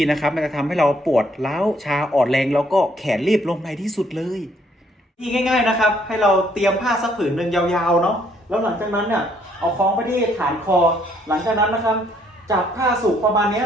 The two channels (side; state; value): both; normal; correlation 0.67